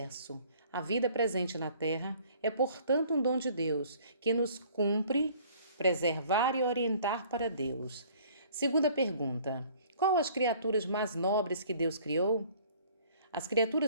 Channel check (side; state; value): both; inverted; correlation -0.55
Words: A vida presente na terra é, portanto, um dom de Deus, que nos cumpre preservar e orientar para Deus. Segunda pergunta. Qual as criaturas mais nobres que Deus criou? As